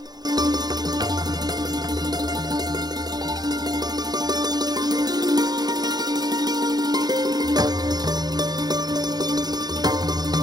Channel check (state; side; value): late; left; 0.19 ms